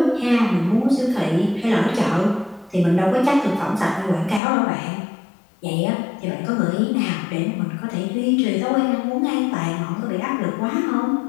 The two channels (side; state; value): right; drops out; at 4.4 s